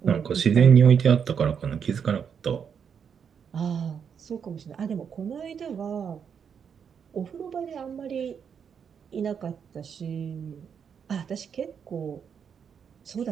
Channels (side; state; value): left; quieter; 7.2 dB